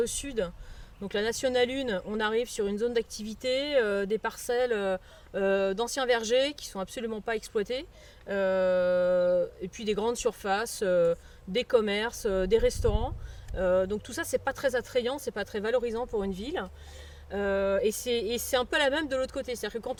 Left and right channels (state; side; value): identical; both; correlation 1.00